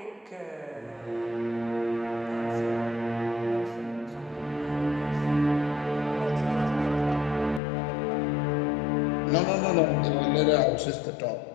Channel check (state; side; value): drops out; right; at 7.6 s